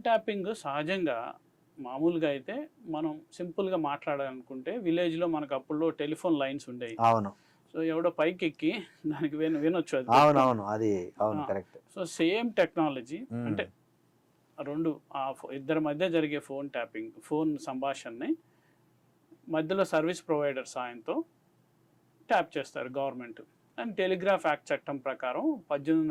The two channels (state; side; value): identical; both; correlation 1.00